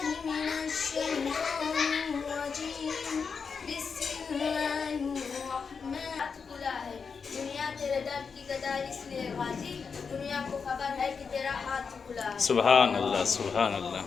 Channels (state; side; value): quieter; right; 5.6 dB